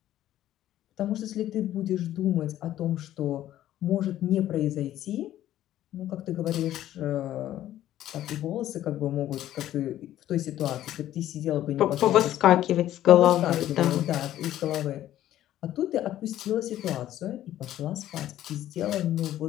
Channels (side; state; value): right; quieter; 12.9 dB